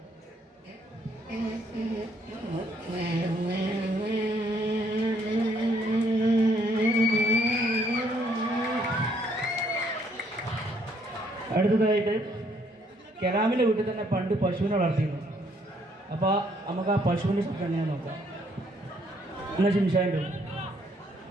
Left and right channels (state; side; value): normal; both; correlation 0.68